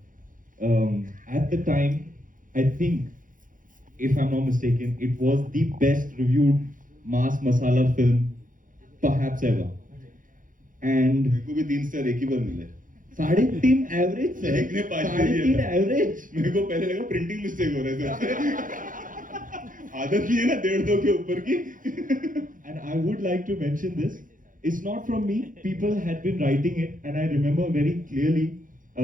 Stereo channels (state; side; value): late; left; 0.39 ms